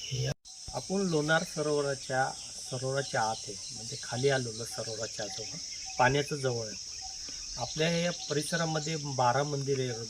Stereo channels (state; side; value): identical; both; correlation 1.00